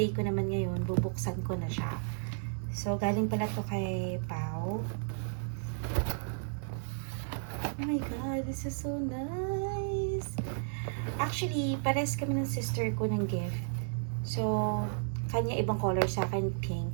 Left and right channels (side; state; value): left; silent; 56 dB below the other